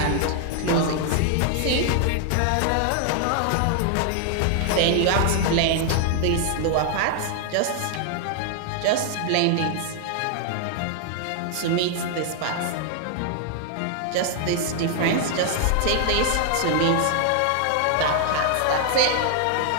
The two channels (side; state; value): both; different; correlation 0.00